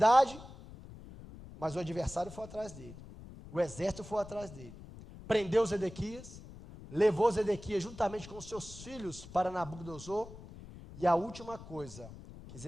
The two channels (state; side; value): noise; left; rumble, 15 dB below the sound